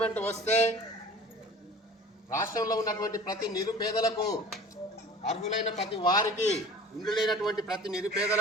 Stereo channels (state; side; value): normal; both; correlation 0.43